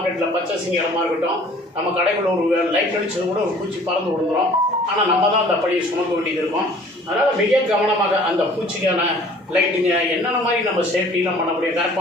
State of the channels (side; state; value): both; normal; correlation 0.52